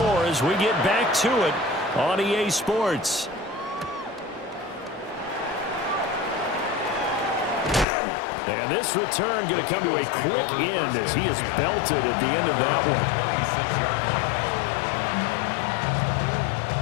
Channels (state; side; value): drops out; right; at 7.9 s